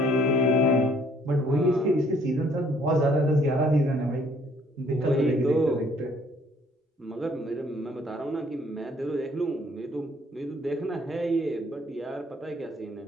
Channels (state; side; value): normal; both; correlation 0.62